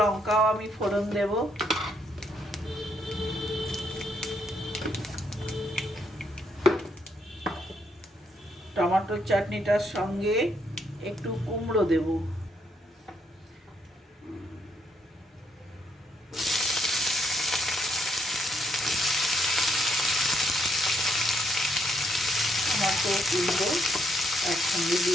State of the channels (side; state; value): both; normal; correlation 0.74